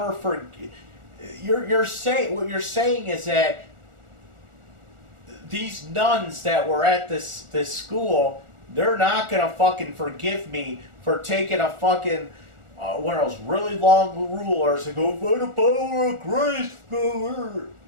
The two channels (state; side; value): late; left; 1.4 ms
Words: forgive? What you're saying is that these nuns that were at this school, they're not gonna fucking forgive me for taking a fucking one of those really long rulers and go, by the power of grace, go.